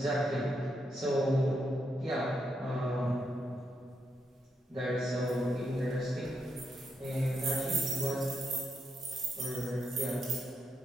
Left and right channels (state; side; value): normal; both; correlation 0.82